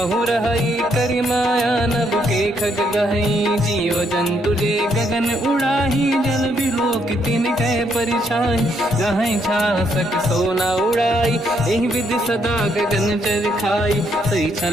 रहई करि माया नभ के खग गहई जीव जंतु जे गगन उड़ाही जल बिलोक तिन कह परिछाई गहई छासक सोना उड़ाई एहि विधि सदा गगन चर खाई सही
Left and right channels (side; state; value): both; normal; correlation 0.73